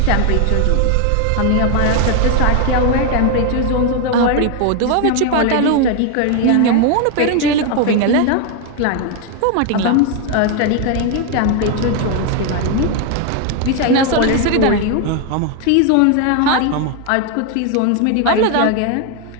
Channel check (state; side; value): different; both; correlation 0.01